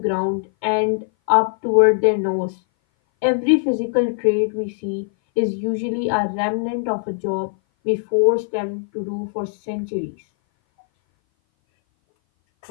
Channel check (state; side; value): silent; right; 59 dB below the other